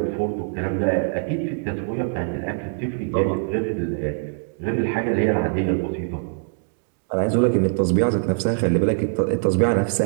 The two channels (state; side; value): silent; left; digital silence